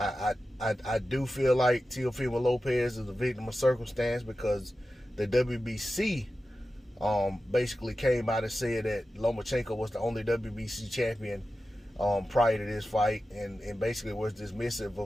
do feel like Teofimo Lopez is a victim of circumstance, because the WBC basically came out and said that Lomachenko was the only WBC champion prior to this fight, and basically was dismissive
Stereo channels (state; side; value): normal; both; correlation 0.93